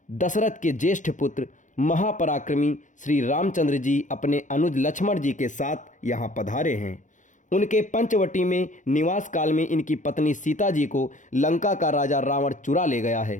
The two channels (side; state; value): right; late; 0.36 ms